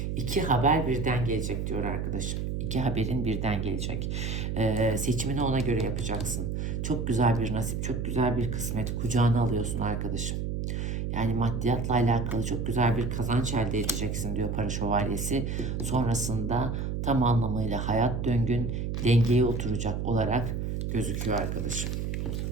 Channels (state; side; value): noise; right; hum, 2 dB below the sound